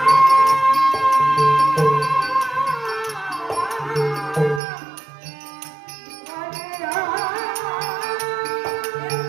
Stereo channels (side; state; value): left; drops out; at 4.6 s